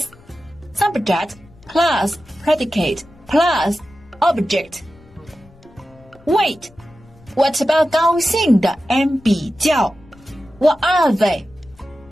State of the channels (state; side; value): noise; left; rumble, 26 dB below the sound